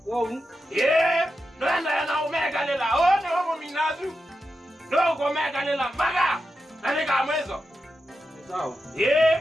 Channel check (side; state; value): both; normal; correlation 0.89